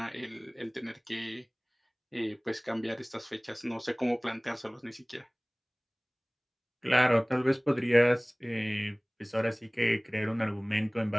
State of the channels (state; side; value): identical; both; correlation 1.00